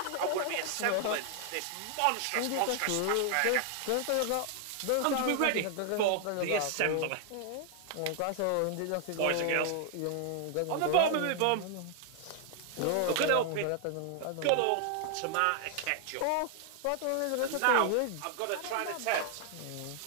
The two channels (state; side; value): different; both; correlation 0.00